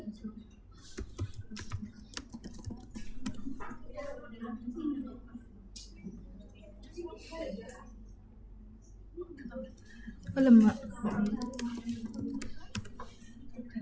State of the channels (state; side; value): identical; both; correlation 1.00